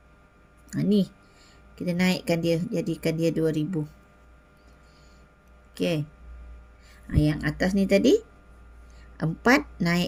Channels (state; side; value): identical; both; correlation 1.00